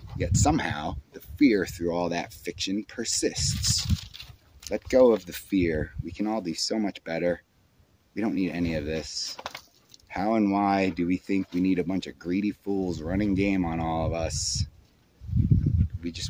yet somehow the fear through all that fiction persists. Let go of the fear. We can all do so much better. We don't need any of this. How and why do we think we need a bunch of greedy fools running game on all of us?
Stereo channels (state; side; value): identical; both; correlation 1.00